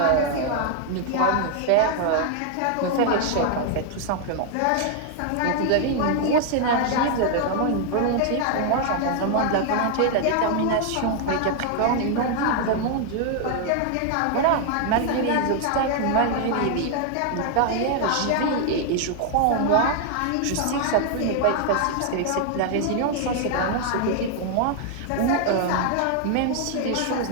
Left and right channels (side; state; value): both; different; correlation 0.00